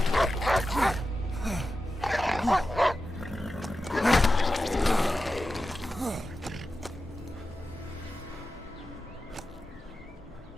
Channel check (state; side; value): normal; both; correlation 0.92